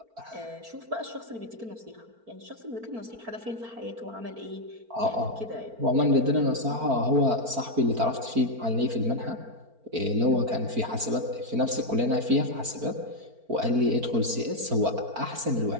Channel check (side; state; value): left; late; 4.4 ms